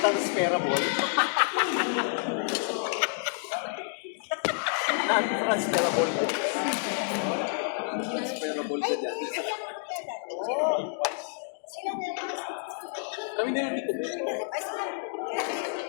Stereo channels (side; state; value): right; silent; digital silence